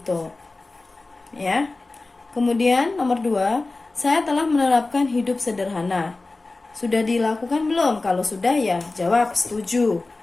Ya. Kemudian nomor 2, saya telah menerapkan hidup sederhana. Sudah dilakukan belum? Kalau sudah ya jawab setuju,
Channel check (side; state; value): right; quieter; 3.3 dB